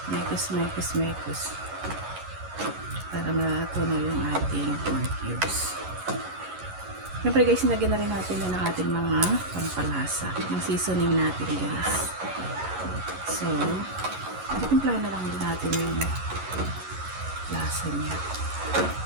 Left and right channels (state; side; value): late; left; 11 ms